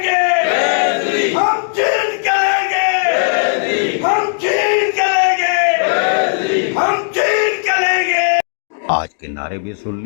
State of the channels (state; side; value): silent; right; 68 dB below the other